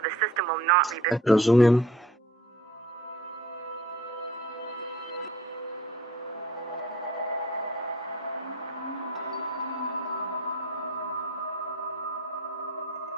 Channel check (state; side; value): normal; both; correlation 0.49